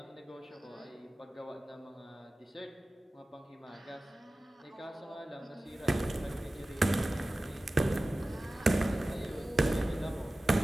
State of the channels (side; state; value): both; normal; correlation 0.96